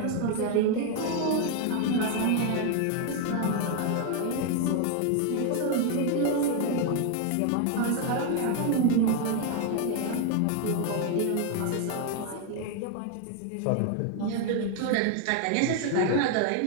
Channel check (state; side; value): different; both; correlation 0.00